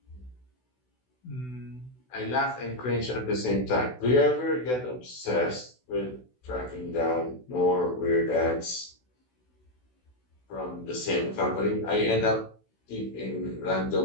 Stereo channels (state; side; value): late; right; 16 ms